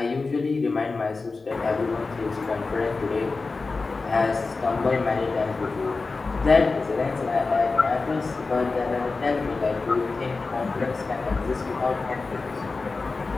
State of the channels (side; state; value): right; quieter; 3.9 dB